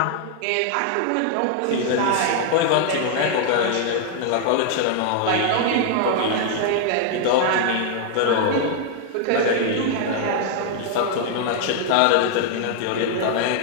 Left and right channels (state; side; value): different; both; correlation 0.00